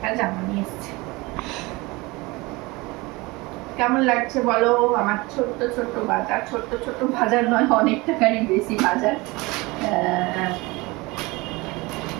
জামা নিয়ে এসেছি। কেমন লাগছে বলো আমার ছোট্ট ছোট্ট বাজার? ছোট্ট ছোট্ট বাজার নয়, অনেক টাকারই বেশি বাজার।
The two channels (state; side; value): quieter; left; 23.4 dB